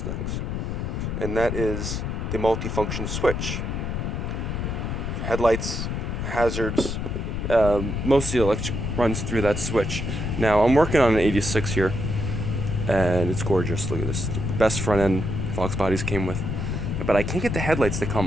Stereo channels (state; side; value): noise; left; rumble, 2 dB below the sound